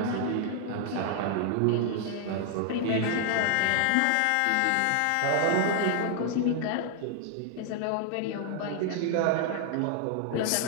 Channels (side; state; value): both; different; correlation 0.00